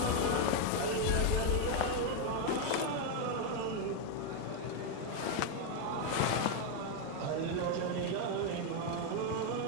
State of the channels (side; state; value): both; different; correlation 0.01